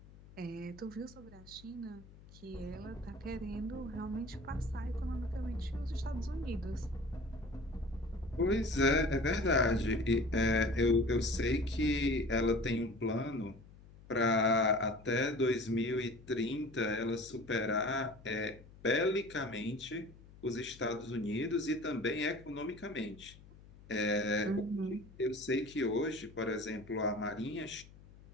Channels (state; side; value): noise; left; hum, 21 dB below the sound